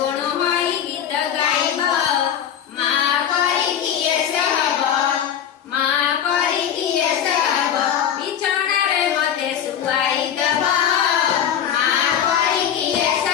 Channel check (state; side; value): quieter; right; 9.2 dB